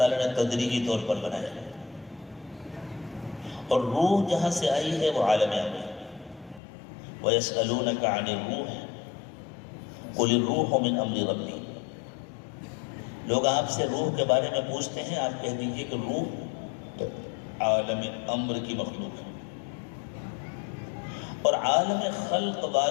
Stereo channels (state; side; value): drops out; right; at 6.6 s